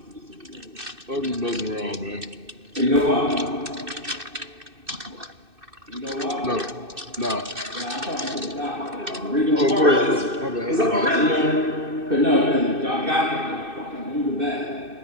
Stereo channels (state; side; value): late; left; 2.6 ms